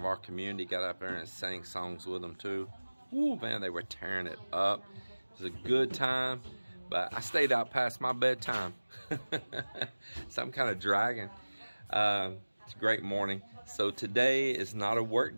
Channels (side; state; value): both; inverted; correlation -1.00